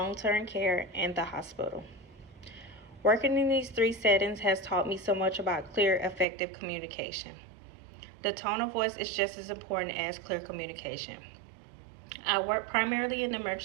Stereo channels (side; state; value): left; drops out; at 6.2 s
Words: care, and the hospital. Working in these three settings has taught me so much about clear, effective communication. The tone of voice is just as important as clear communication. I work primarily in the